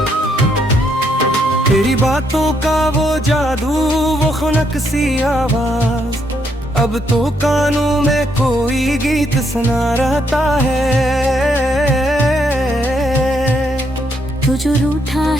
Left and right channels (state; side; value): normal; both; correlation 0.75